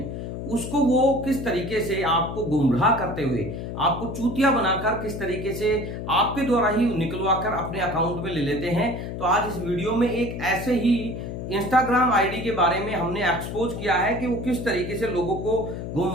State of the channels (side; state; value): left; noise; hum, 6 dB below the sound